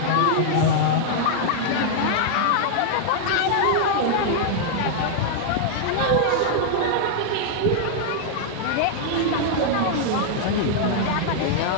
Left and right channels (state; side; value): different; both; correlation -0.01